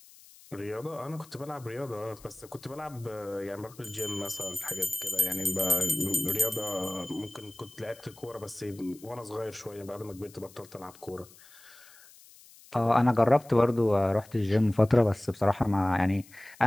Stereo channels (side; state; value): left; noise; hiss, 23 dB below the sound